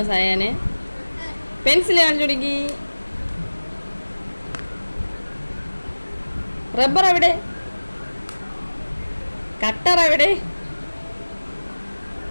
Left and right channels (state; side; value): inverted; both; correlation -1.00